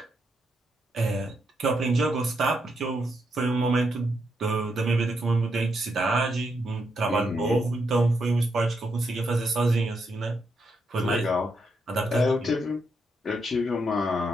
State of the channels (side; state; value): both; normal; correlation 0.80